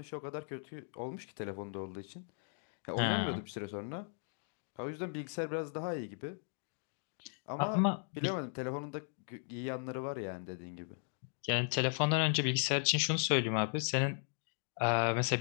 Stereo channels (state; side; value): silent; right; 53 dB below the other